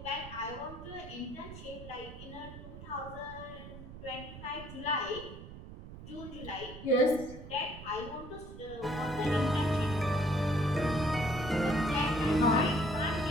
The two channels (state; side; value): noise; right; rumble, 13 dB below the sound